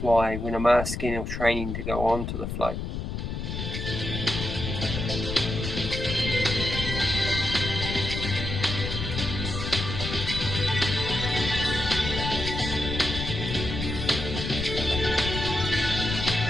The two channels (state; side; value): noise; left; rumble, 4 dB below the sound